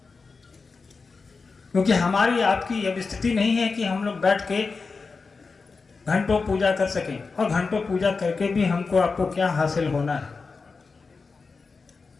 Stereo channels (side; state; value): right; quieter; 4.5 dB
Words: क्योंकि हमारी आपकी अब स्थिति नहीं है कि हम लोग बैठ के घंटों पूजा कर सकें, और घंटों पूजा करके भी हमको आपको क्या हासिल होना है।